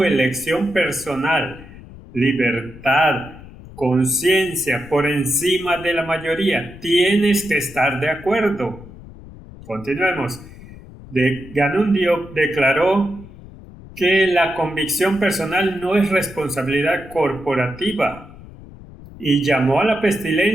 elección personal, libertad, conciencia por encima de la mayoría. Tienes que estar de acuerdo. Continuemos. Ganun Diop declaró que la convicción personal no es responsabilidad corporativa y llamó a la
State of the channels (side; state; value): left; noise; rumble, 18 dB below the sound